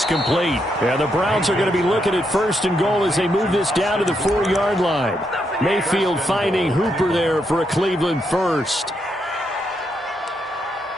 complete. And the Browns are going to be looking at 1st and goal as they move this down to the 4-yard line. Mayfield finding Hooper there for a Cleveland first.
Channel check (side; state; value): both; normal; correlation 0.80